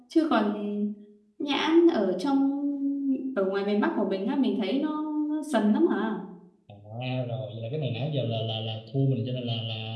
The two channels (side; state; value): both; identical; correlation 1.00